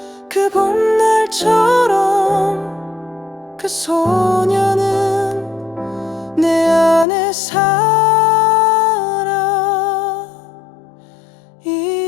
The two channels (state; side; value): drops out; right; at 7.1 s